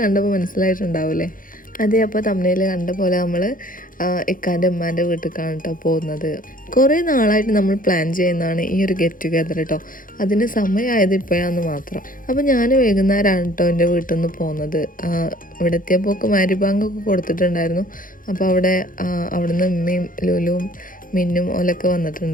കണ്ടപ്പോൾ മനസ്സിലായിട്ടുണ്ടാവില്ലേ? അതെ, അപ്പോൾ തമ്മിൽ കണ്ട പോലെ നമ്മൾ ഇക്കാൻ്റെ ഉമ്മാൻ്റെ വീട്ടിലേക്കാണ് കേട്ടോ പോകുന്നത്. കുറേ നാളായിട്ട് നമ്മൾ പ്ലാൻ ചെയ്യുന്നതാണ് ഈ ഒരു ഗെറ്റ് ടുഗെദർ കേട്ടോ. അതിന് സമയമായത് ഇപ്പോഴാന്ന് മാത്രം. അപ്പോൾ ഞാൻ വൈകുന്നേരമാണ് കേട്ടോ എൻ്റെ വീട്ടിൽ നിന്ന് പോകുന്നത്. ഇവിടെ എത്തിയപ്പോൾ മാരിബാങ്കൊക്കെ കൊടുത്തിട്ടുണ്ടായിരുന്നു. അപ്പോൾ അവിടുന്ന് ഉമ്മയും ലുലുവും മിന്നും ഓലൊക്കെ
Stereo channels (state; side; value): late; right; 0.40 ms